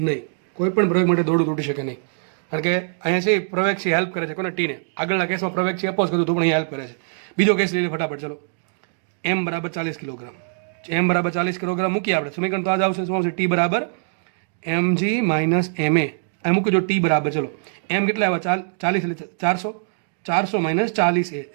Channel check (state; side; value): silent; left; digital silence